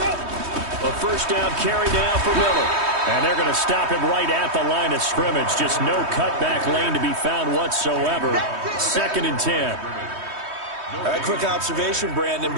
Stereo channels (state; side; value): late; left; 3.2 ms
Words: A first down carry now for Miller. And they're going to stop him right at the line of scrimmage. Just no cutback lane to be found whatsoever. 2nd and 10. All right, quick observation, Brandon,